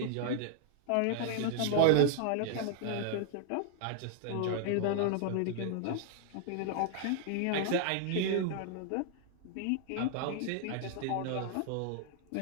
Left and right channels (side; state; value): both; different; correlation 0.00